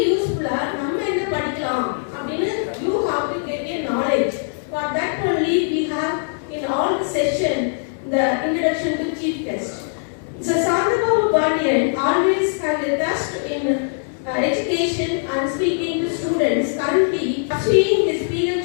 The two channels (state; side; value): silent; right; digital silence